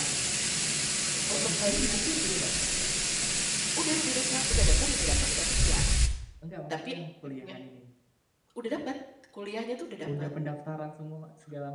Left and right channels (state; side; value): identical; both; correlation 1.00